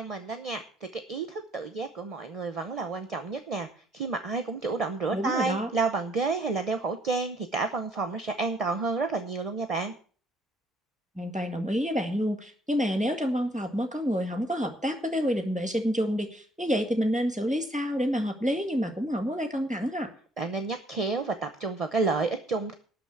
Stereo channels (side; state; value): both; normal; correlation 0.64